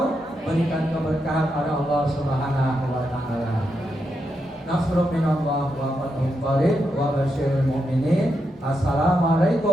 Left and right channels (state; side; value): normal; both; correlation 0.84